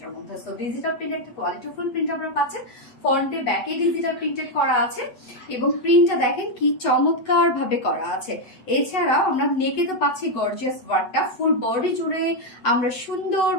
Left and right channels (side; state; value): right; late; 8.2 ms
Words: মধ্যে। সো ডিজিটাল প্রিন্ট একটা কোয়ালিটিফুল প্রিন্ট আমরা পাচ্ছেন। ফ্রন্টে ব্যাকে ডিজিটাল প্রিন্টেড করা আছে এবং প্রিন্টটা দেখেন কি চমৎকার ভাবে করা আছে। এছাড়াও আমরা নেকে তো পাচ্ছি গর্জিয়াস ওয়ার্কটা, ফুল বডি জুড়ে আমরা সুন্দর